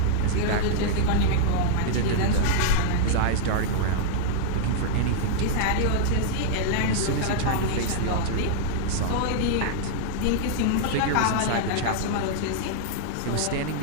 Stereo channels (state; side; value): different; both; correlation -0.01